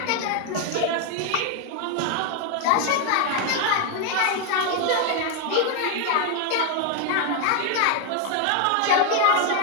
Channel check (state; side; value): different; both; correlation 0.01